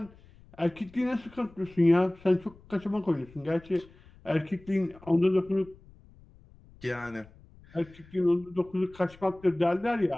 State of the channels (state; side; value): noise; left; rumble, 24 dB below the sound